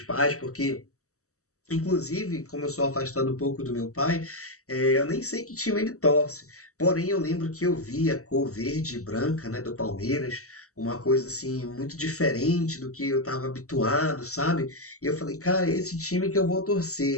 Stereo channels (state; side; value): late; right; 0.65 ms